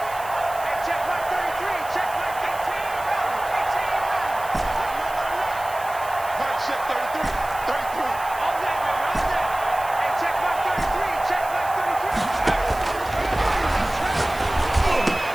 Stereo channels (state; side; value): noise; right; hiss, 17 dB below the sound